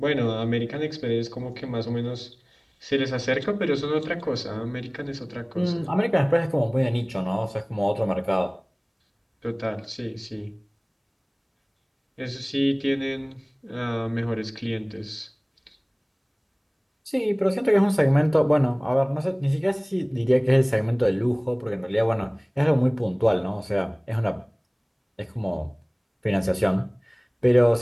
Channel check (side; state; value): both; identical; correlation 1.00